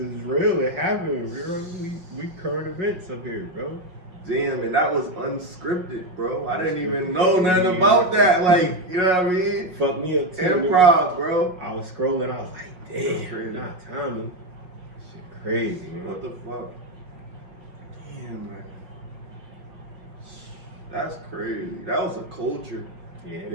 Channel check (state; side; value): late; left; 5.5 ms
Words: real. It happened. We current events up here, bro. Damn, and that was unscripted, bro. I didn't even know nothing about that. Like, you know what I mean? Fuck me up too. Improv, bro. I was scrolling. I was like, damn, not Tommy. Shit crazy, man. What the fuck? Damn, man. That's crazy. That was a culture. Yeah.